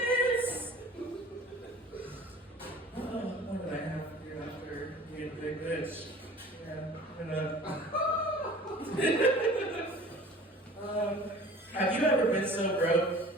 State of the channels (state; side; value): normal; both; correlation 0.44